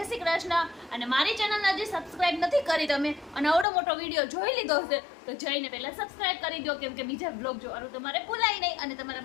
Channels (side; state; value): right; drops out; at 3.7 s